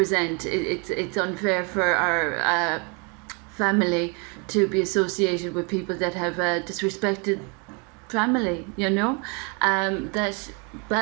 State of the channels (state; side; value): quieter; left; 33.8 dB